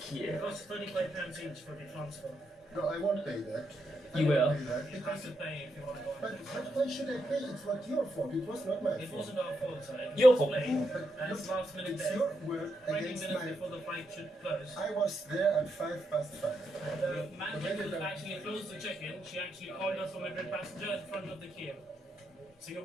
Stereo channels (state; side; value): normal; both; correlation 0.82